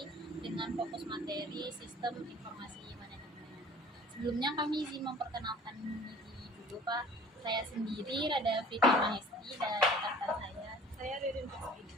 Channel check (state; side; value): normal; both; correlation 0.48